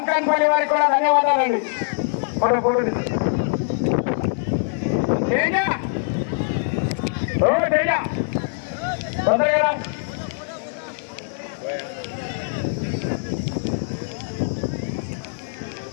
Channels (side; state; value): right; silent; digital silence